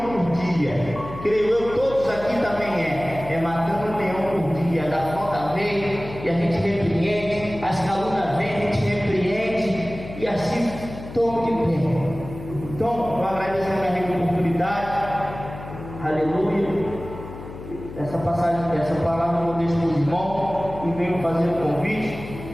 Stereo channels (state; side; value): noise; left; hum, 13 dB below the sound